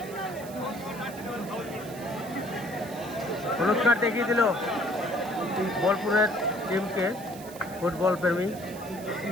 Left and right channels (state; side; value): noise; right; hiss, 17 dB below the sound